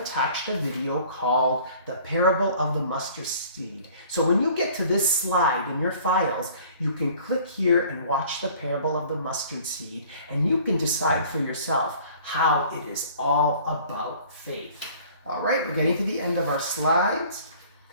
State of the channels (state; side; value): inverted; both; correlation -0.51